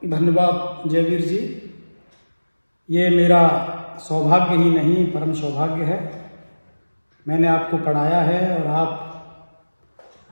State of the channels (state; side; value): inverted; both; correlation -1.00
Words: धन्यवाद जयवीर जी। ये मेरा सौभाग्य ही नहीं, परम सौभाग्य है। मैंने आपको पढ़ाया है और आप